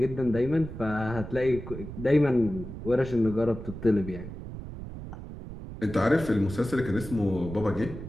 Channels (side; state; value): right; noise; rumble, 10 dB below the sound